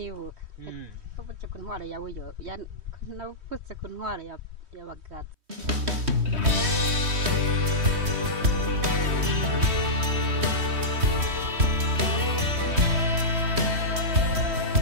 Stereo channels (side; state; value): left; late; 3.1 ms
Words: Wavutse ku ntwaro yawe yo. Navutse ku ntwaro y'abagaza.